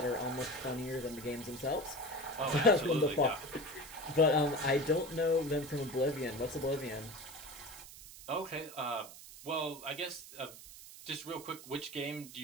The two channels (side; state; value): right; noise; hiss, 16 dB below the sound